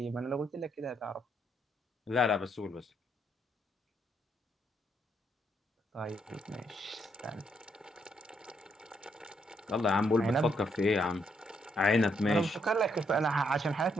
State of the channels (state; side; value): normal; both; correlation 0.75